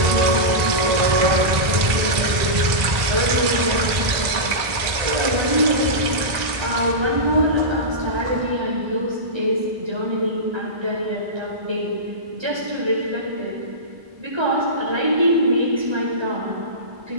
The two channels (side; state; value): left; late; 1.9 ms